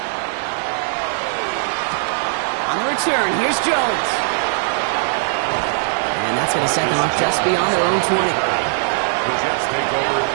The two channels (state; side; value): silent; left; digital silence